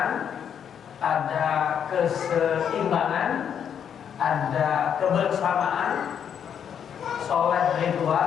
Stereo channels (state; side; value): quieter; right; 8.3 dB